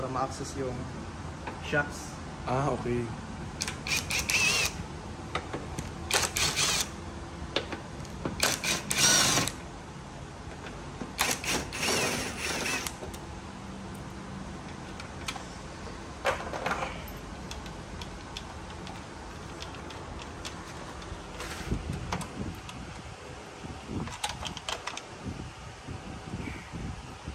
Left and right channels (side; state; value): both; identical; correlation 1.00